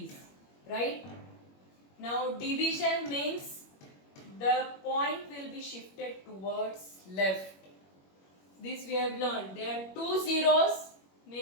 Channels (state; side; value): late; right; 21 ms